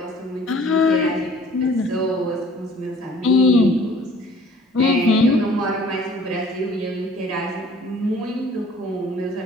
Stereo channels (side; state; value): both; normal; correlation 0.52